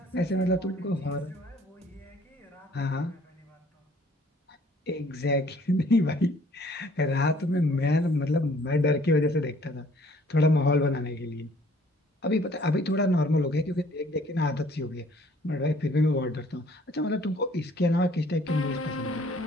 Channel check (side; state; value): both; normal; correlation 0.58